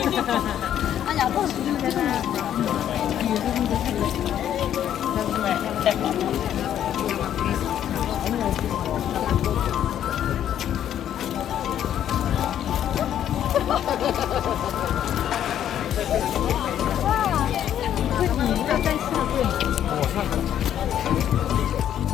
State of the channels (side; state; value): right; quieter; 10.5 dB